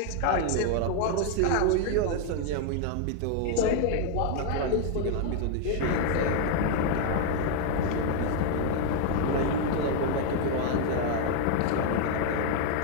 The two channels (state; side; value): different; both; correlation 0.00